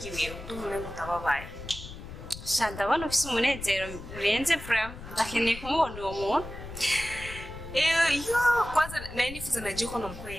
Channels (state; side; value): noise; left; rumble, 12 dB below the sound